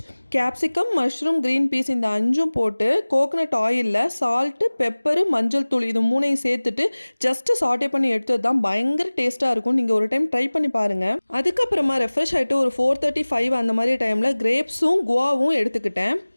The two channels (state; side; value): inverted; both; correlation -1.00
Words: capsicum, mushroom, green peas இந்த 5ம் போட்டு கோகனட் ஆயிலில் சால்ட்டு, பெப்பரு, மஞ்சள் தூள் இது 3ஐயும் சேர்த்துட்டு ஜஸ்ட்டு சாட்டே பண்ணி எடுத்தது தான் பயங்கர டேஸ்ட்டாக இருக்கும். நீங்கள் ஒரு டைம் ட்ரை பண்ணி பாருங்கள். அதுக்கப்புறமா ரெஃப்ரெஷ் ஆகிட்டு ஒரு 4:35 அந்த மாதிரி டைமில் கிரேப்ஸும் குவாவும் எடுத்துக்கிட்டேன்.